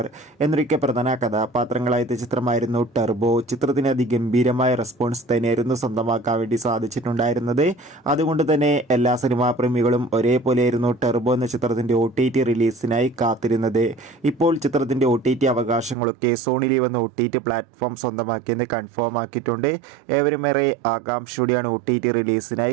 എന്നൊക്കെ പ്രധാന കഥാപാത്രങ്ങളായ ചിത്രമായിരുന്നു ടെർബോ. ചിത്രത്തിന് അതിഗംഭീരമായ റെസ്പോൺസ് തന്നെയായിരുന്നു സ്വന്തമാക്കാൻ വേണ്ടി സാധിച്ചിട്ടുണ്ടായിരുന്നത്. അതുകൊണ്ട് തന്നെ എല്ലാ സിനിമാ പ്രേമികളും ഒരേപോലെയായിരുന്നു ടെർബോ എന്ന ചിത്രത്തിൻ്റെ OTT റിലീസിനായി കാത്തിരുന്നത്. ഇപ്പോൾ ചിത്രത്തിൻ്റെ OTT അവകാശങ്ങളൊക്കെ സോണി ലീവ് എന്ന OTT പ്ലാറ്റ്ഫോം സ്വന്തമാക്കിയെന്ന് കൺഫേം ആക്കിയിട്ടുണ്ട്. ഏവരുമേറെ ആകാംക്ഷയോടെയാണ് OTT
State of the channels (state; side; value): drops out; left; at 16.0 s